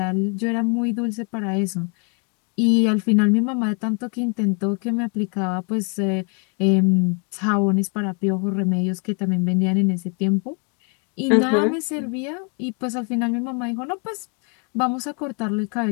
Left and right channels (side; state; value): right; quieter; 36.8 dB